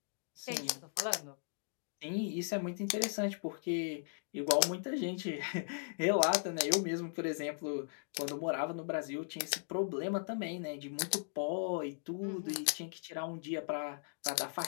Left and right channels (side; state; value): right; silent; digital silence